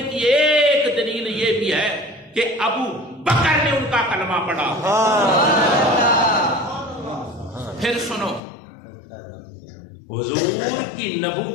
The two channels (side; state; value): right; drops out; at 8.4 s